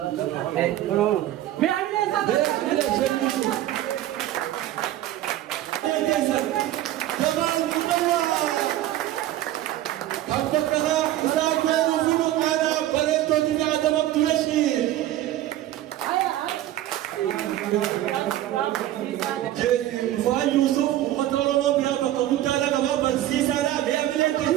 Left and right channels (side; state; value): left; quieter; 13.7 dB